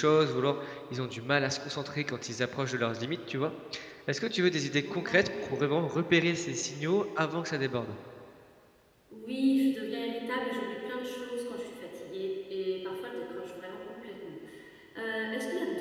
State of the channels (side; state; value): both; identical; correlation 1.00